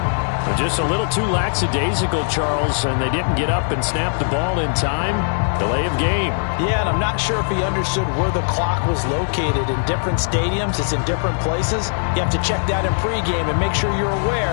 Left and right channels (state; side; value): silent; right; digital silence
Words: Just a little too lackadaisical, Charles, and they didn't get up and snap the ball in time. Delay of game. Yeah, and I'm not sure if he understood where the clock was located. In different stadiums, it's in different places. You have to check that in pregame and make sure you're